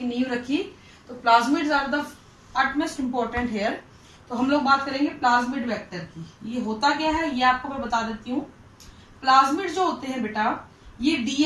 नींव रखी. तो plasmids are the utmost important here. तो हम लोग बात करेंगे प्लाज्मिड वेक्टर की. ये होता क्या है ये आपको मैं बता देती हूँ. प्लाज्मिड जो होते हैं बेटा ये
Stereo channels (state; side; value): identical; both; correlation 1.00